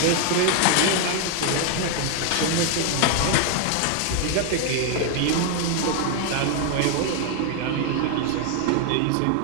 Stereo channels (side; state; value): both; different; correlation 0.00